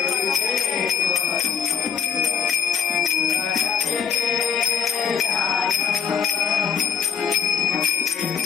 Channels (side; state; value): right; quieter; 7.3 dB